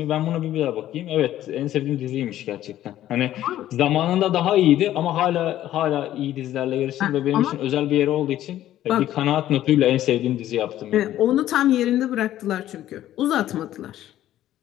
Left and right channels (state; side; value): quieter; right; 13.0 dB